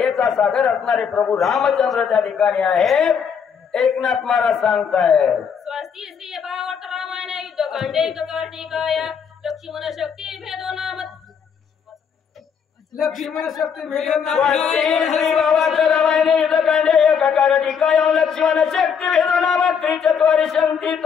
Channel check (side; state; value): right; quieter; 6.9 dB